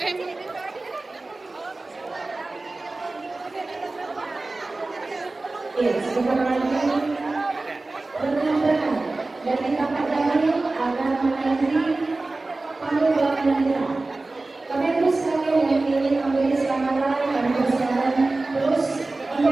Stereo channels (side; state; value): left; quieter; 3.2 dB